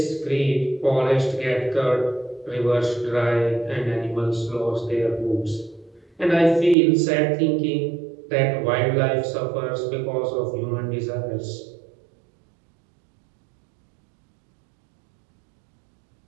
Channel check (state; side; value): drops out; left; at 6.8 s